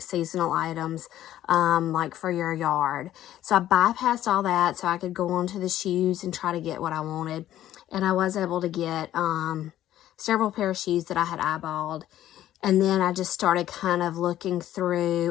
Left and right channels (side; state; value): right; quieter; 12.8 dB